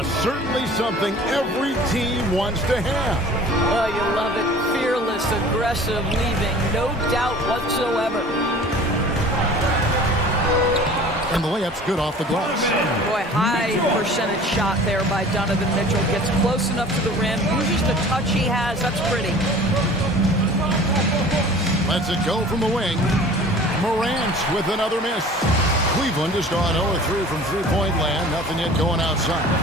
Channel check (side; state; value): both; normal; correlation 0.45